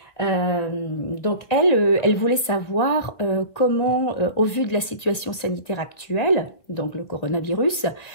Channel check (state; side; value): late; right; 1.9 ms